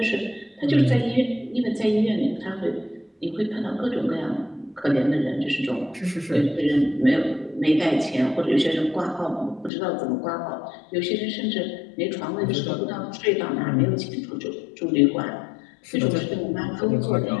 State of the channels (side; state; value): right; drops out; at 9.7 s